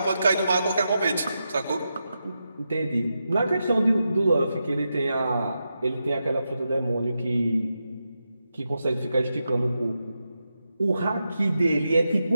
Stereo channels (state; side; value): inverted; both; correlation -0.87